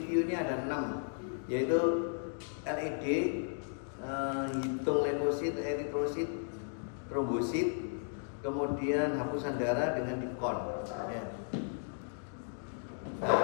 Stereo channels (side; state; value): right; silent; digital silence